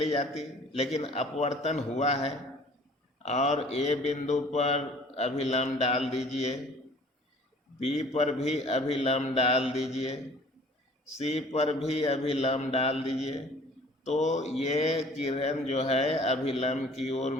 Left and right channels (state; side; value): normal; both; correlation 0.51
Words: जाती, लेकिन अपवर्तन हुआ है, और ए बिंदु पर अभिलंब डाल दीजिए, बी पर भी अभिलंब डाल दीजिए, सी पर भी अभिलंब डाल दीजिए, तो ये किरण जो है अभिलंब की ओर